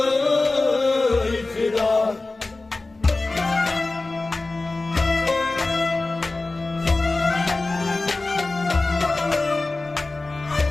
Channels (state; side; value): quieter; right; 3.3 dB